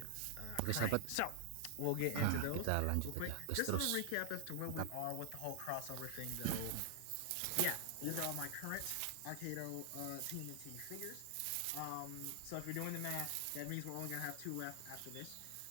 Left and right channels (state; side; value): different; both; correlation 0.00